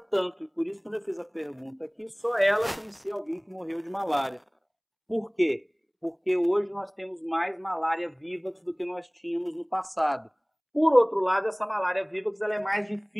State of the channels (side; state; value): both; identical; correlation 1.00